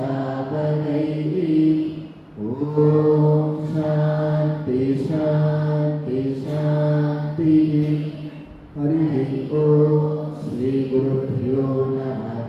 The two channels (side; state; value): both; identical; correlation 1.00